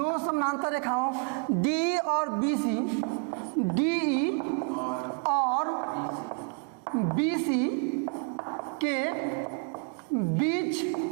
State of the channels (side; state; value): left; quieter; 39.6 dB